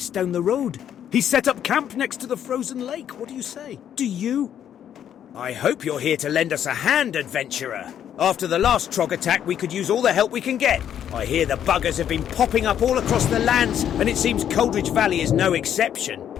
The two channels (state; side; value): quieter; right; 9.7 dB